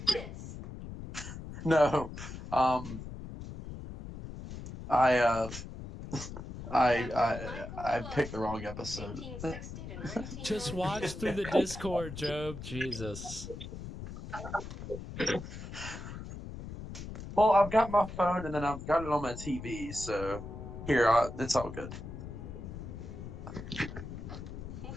this. No. I picked the wrong episode. 1860 to 19... Just watch through the Discord, Job. Jesus. Well, I've got my phone and then I've got it on my TV, so here, it's all good. Hey,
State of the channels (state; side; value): noise; left; rumble, 10 dB below the sound